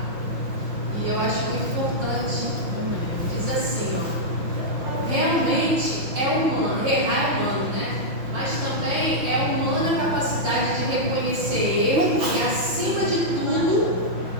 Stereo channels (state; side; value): late; left; 6.0 ms